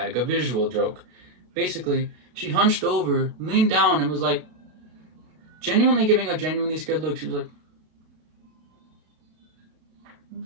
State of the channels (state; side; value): late; left; 33 ms